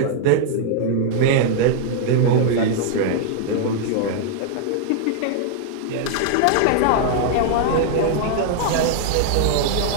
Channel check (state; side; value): different; both; correlation -0.01